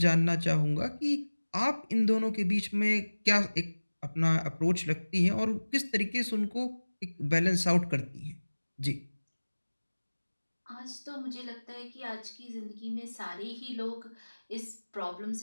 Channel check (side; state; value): both; inverted; correlation -1.00